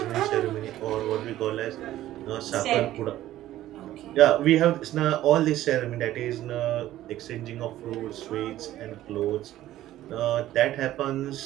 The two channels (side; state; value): left; quieter; 14.0 dB